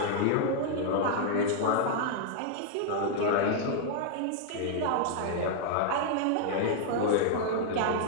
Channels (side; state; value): both; different; correlation -0.01